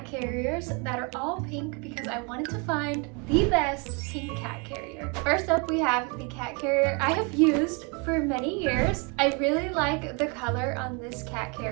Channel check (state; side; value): quieter; left; 32.7 dB